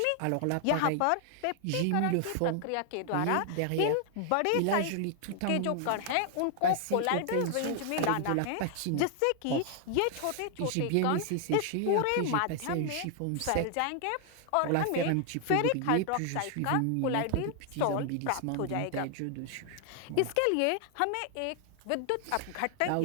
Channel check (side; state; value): both; different; correlation 0.00